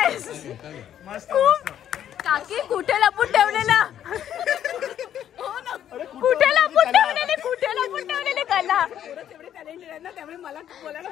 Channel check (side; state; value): right; quieter; 10.3 dB